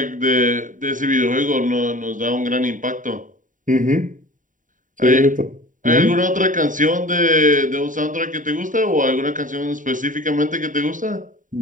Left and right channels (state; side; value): late; left; 0.38 ms